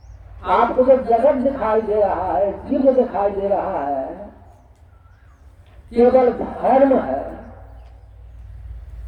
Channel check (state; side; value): identical; both; correlation 1.00